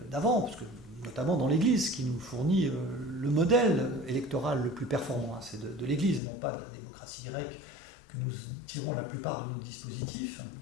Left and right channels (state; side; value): drops out; right; at 6.2 s